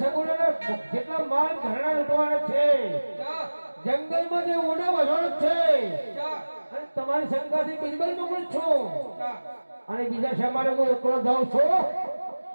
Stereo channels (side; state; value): both; inverted; correlation -1.00